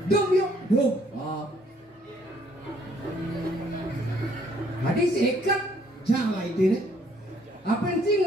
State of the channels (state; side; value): normal; both; correlation 0.64